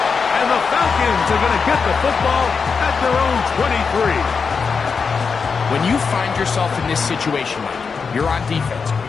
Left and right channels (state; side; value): quieter; right; 5.4 dB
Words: And the Falcons are going to get the football at their own 23. When you find yourself in this situation, Mike, you're on defense.